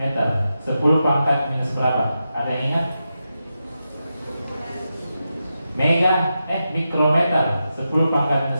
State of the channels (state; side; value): inverted; both; correlation -0.89